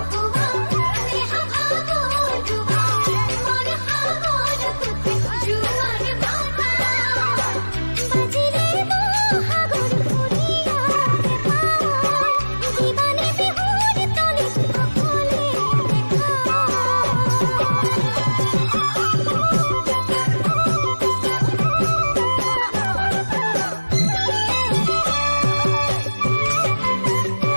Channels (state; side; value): inverted; both; correlation -1.00